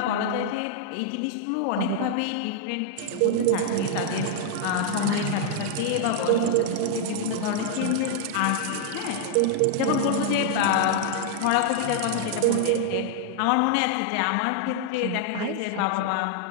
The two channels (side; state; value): both; different; correlation -0.01